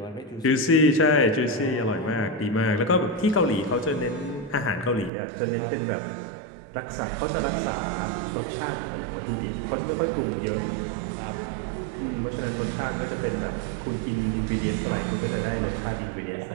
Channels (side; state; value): left; drops out; at 5.1 s